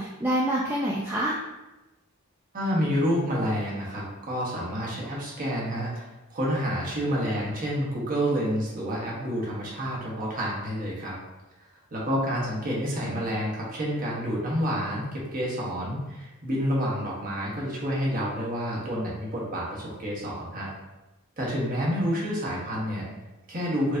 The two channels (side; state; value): both; normal; correlation 0.59